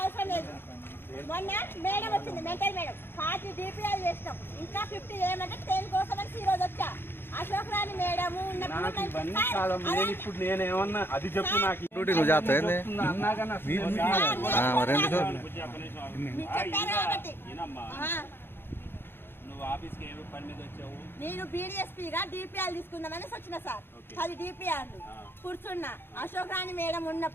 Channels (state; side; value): late; right; 0.10 ms